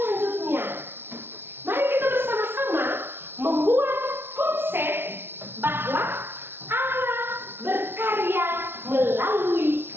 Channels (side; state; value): left; late; 0.11 ms